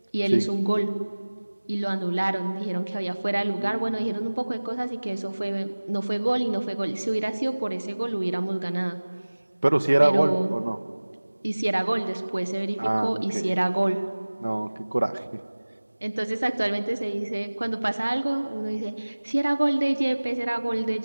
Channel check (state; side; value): inverted; both; correlation -1.00